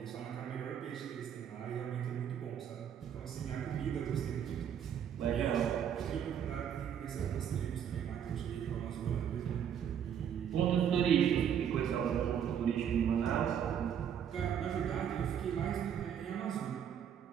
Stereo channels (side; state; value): left; quieter; 8.7 dB